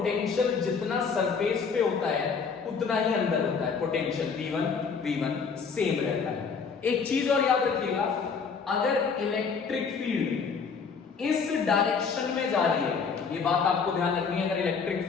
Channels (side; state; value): right; quieter; 5.6 dB